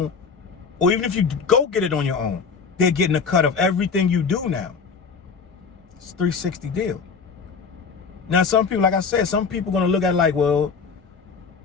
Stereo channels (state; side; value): quieter; right; 5.5 dB